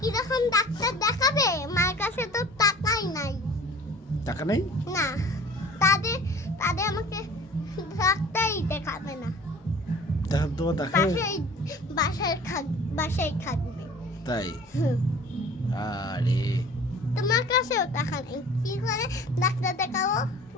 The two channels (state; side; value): normal; both; correlation 0.45